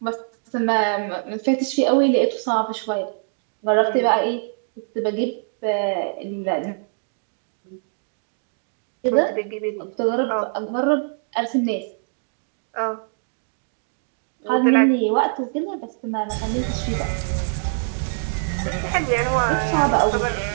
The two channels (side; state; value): left; silent; digital silence